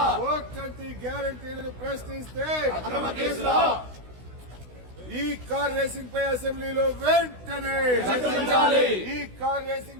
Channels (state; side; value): late; left; 16 ms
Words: 420 గ్యారంటీలను ప్రశ్నిస్తే అక్రమ కేసులా ఈ కార్ రేసింగ్ పై అసెంబ్లీలో వెంటనే చర్చించాలి. ఈ కార్